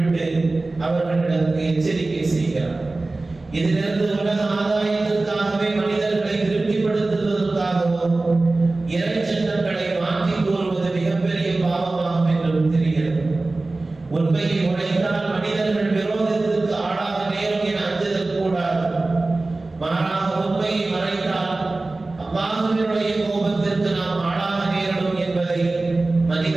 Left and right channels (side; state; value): left; quieter; 3.2 dB